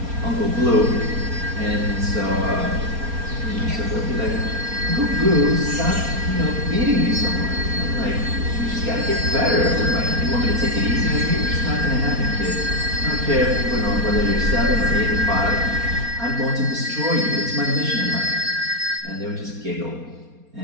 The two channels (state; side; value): late; left; 4.3 ms